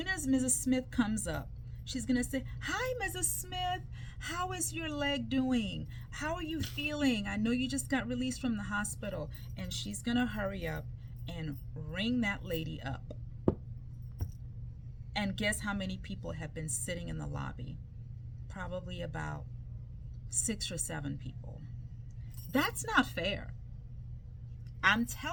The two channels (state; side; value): identical; both; correlation 1.00